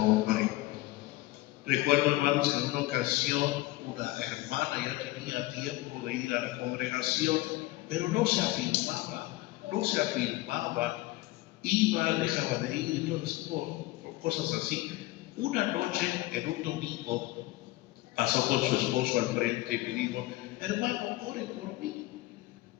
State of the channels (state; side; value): quieter; right; 18.9 dB